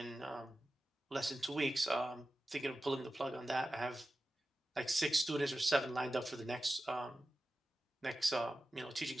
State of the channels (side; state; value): both; normal; correlation 0.94